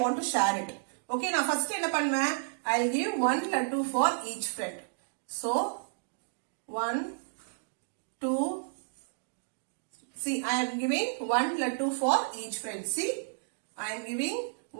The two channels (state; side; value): silent; left; digital silence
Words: want to share it. Okay, now first என்ன பண்ணுவேன்? I'll give 1 laddu for each friend. So, 1, 2, see, I am giving 1 laddu for each friend. See, I am giving